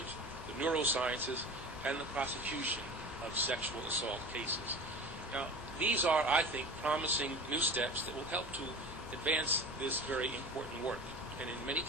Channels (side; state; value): both; normal; correlation 0.35